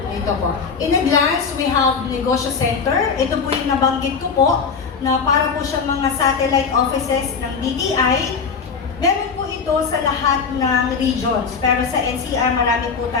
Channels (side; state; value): right; quieter; 5.6 dB